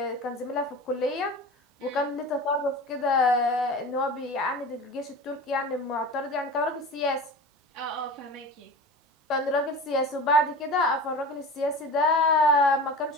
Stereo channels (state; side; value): normal; both; correlation 0.33